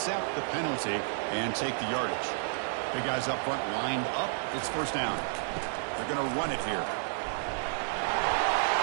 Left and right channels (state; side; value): silent; left; digital silence